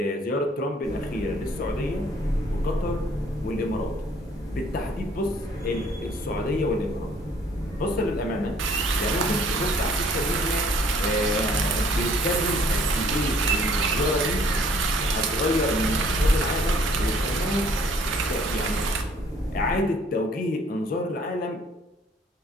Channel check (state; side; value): normal; both; correlation 0.59